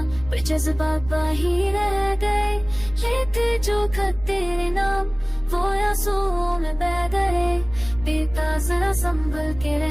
पर जज्बात बाही रह गए, लेते जो खत तेरे नाम वो आंसुओं में बह गए। बेटा जरा संभल के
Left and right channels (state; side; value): noise; right; rumble, 15 dB below the sound